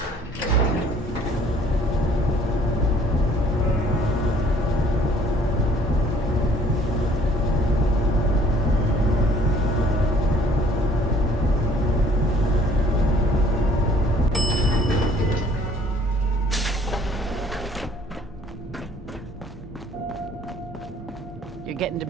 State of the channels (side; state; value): both; normal; correlation 0.57